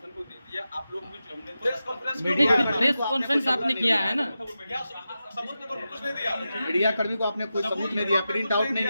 को दे दिया, आप लोग भी जो हमने प्रेस कॉन्फ्रेंस प्रेस कॉन्फ्रेंस आपने किया है ना। क्या सबूत के तौर पर कुछ नहीं दिया। मीडिया कर्मी को आपने कोई सबूत नहीं दिया, प्रिंट आउट नहीं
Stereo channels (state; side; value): inverted; both; correlation -0.91